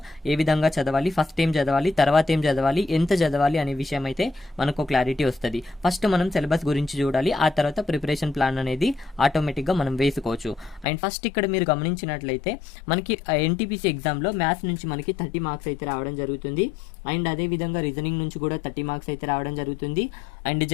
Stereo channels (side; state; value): right; drops out; at 10.9 s